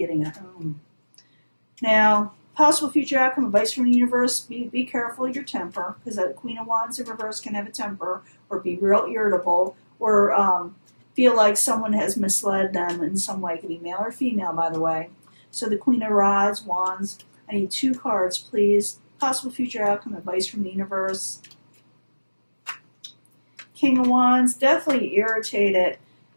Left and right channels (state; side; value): inverted; both; correlation -1.00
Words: a home. Now, possible future outcome, advice from the universe, be careful of your temper, because the Queen of Wands in reverse can have a temper, or be real irritable, or feel like someone has misled them in some way. It could be male or female, by the way. So the Queen of Rods, Wands, I need 2 cards, please. Possible future outcome, advice from the universe. King of Wands, definitely irritated